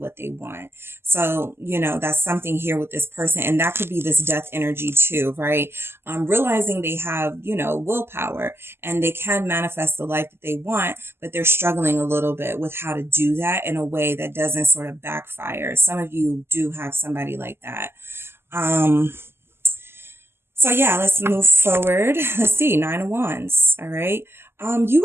they want. So, you know, that's something here with this person. And that could be this death energy too, right? Realizing they have, you know, willpower, and they can manifest the life that they want, but they're struggling a little bit with how to do that in a way that doesn't sort of backfire. Some of you do have somebody like that. So yeah, let's move forward. Let's see, 9 of Wands. All right. You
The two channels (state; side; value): late; left; 0.12 ms